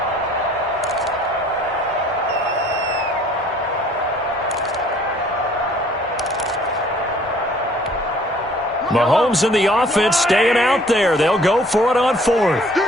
Mahomes and the offense staying out there. They'll go for it on 4th.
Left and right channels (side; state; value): both; normal; correlation 0.56